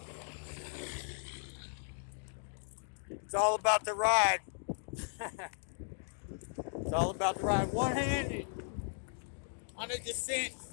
It's all about the ride. It's all about the ride. One-handed on a descent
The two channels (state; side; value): silent; right; digital silence